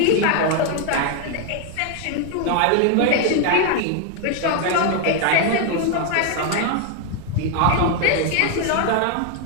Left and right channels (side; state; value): both; different; correlation 0.00